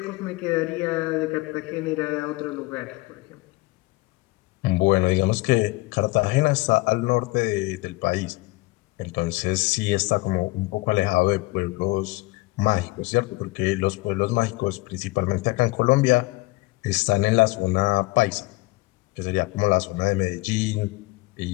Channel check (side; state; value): right; quieter; 21.9 dB